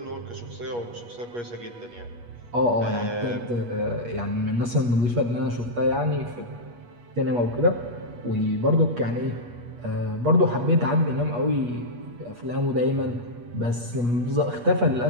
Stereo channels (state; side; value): late; left; 8.4 ms